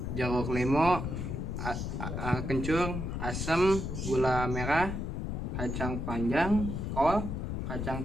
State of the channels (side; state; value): left; noise; rumble, 3 dB below the sound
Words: jeruk limau, kencur, asam, gula merah, kacang panjang, kol, kacang